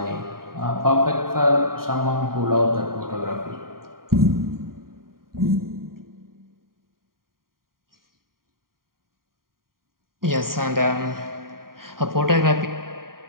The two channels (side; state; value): left; late; 0.91 ms